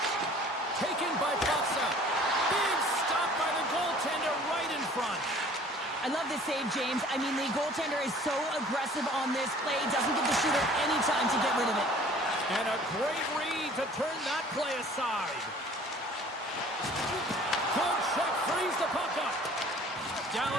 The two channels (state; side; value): normal; both; correlation 0.51